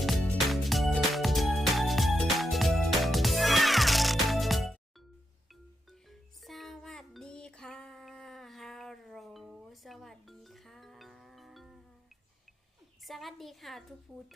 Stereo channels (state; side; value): normal; both; correlation 0.84